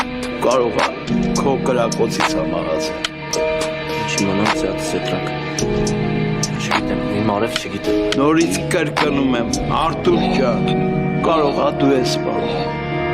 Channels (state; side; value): identical; both; correlation 1.00